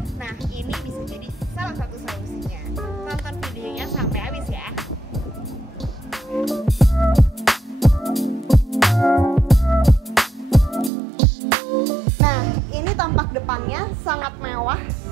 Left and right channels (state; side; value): drops out; left; at 10.9 s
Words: Nah, ini bisa jadi salah satu solusinya. Tonton videonya sampai habis ya. Nah, ini tampak depannya sangat mewah,